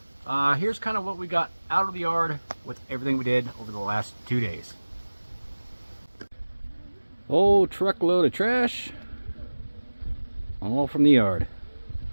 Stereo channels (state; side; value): inverted; both; correlation -1.00